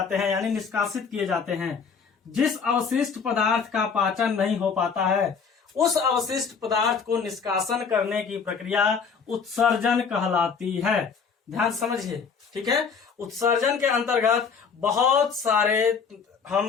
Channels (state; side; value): quieter; right; 5.9 dB